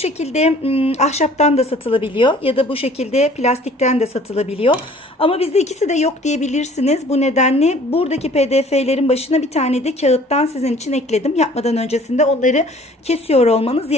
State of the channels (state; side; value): normal; both; correlation 0.52